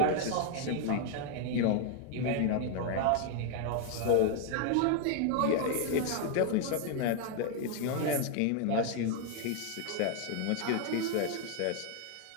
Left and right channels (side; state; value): both; different; correlation 0.00